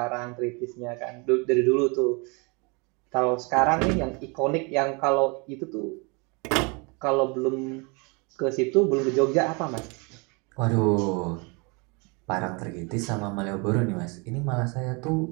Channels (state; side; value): quieter; left; 30.6 dB